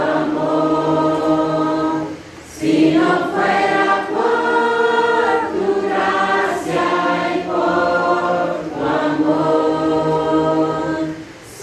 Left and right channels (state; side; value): identical; both; correlation 1.00